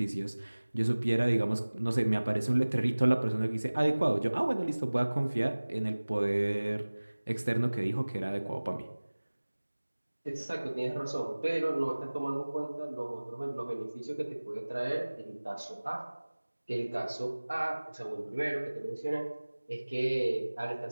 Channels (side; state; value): both; inverted; correlation -1.00